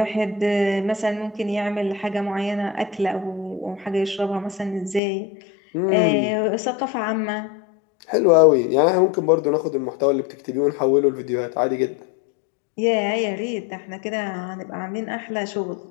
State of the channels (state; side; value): drops out; right; at 5.0 s